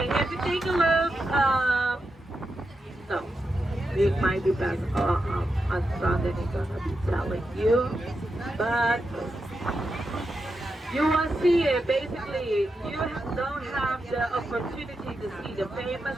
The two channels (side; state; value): both; normal; correlation 0.87